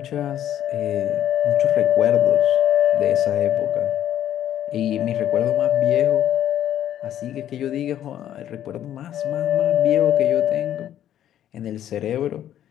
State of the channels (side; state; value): right; quieter; 11.2 dB